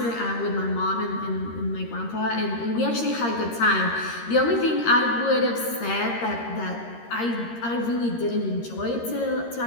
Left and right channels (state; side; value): late; right; 13 ms